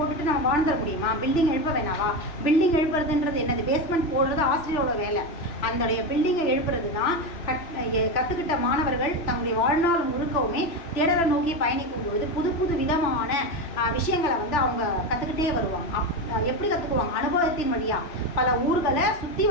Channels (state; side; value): late; right; 3.0 ms